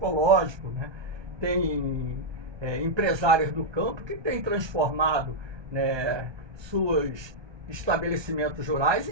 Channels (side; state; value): left; late; 1.2 ms